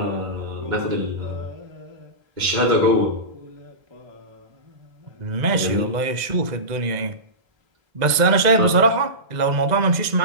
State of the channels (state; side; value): late; left; 2.0 ms